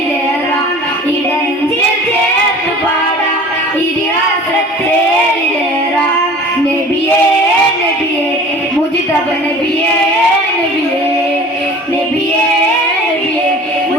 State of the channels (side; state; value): both; normal; correlation 0.43